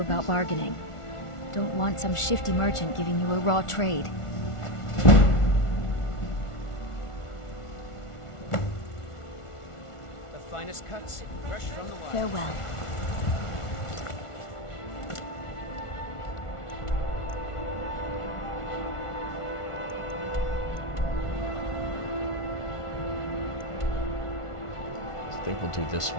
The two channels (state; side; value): late; right; 1.4 ms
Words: about bargaining. Don't want some shifty merchant giving you a raw trade. The finest cuts, fresh from the wild. Farewell. I think we'll do this